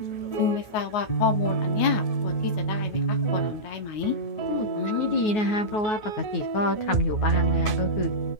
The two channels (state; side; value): late; right; 9.4 ms